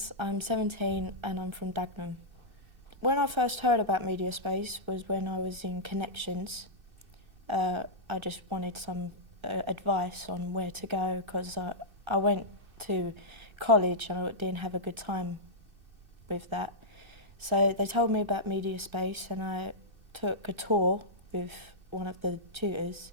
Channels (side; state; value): left; late; 2.6 ms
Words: I'm 17 and I'm from Dagenham. When I first heard about Mediaspace was when I was in Connections. I just wanted some advice on where to go because I went to college and I didn't have a good time with that. So they told me about Mediaspace and I took a tour with one of the tutors